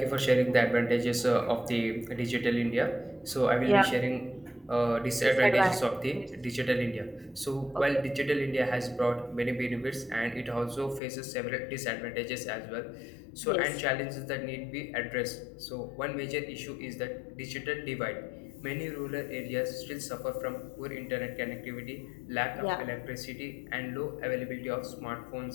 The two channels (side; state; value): right; drops out; at 11.0 s